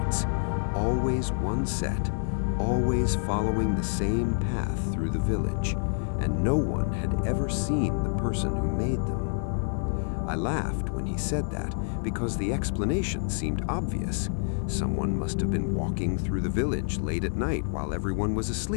always one set, always following the same path through the village, and no one had ever seen the person who made them. I laughed when he said that because the explanation seemed obvious. Someone must have been walking through the village late at night while everyone was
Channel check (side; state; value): right; silent; digital silence